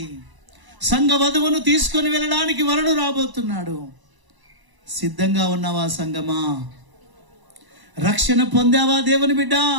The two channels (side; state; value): left; late; 1.0 ms